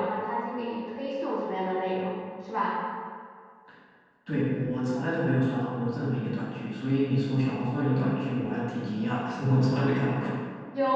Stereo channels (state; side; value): identical; both; correlation 1.00